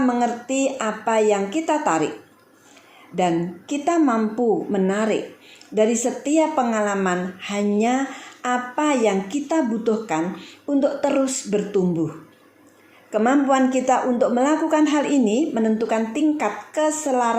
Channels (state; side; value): identical; both; correlation 1.00